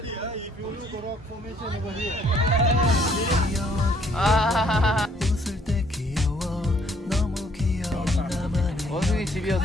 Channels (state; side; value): normal; both; correlation 0.64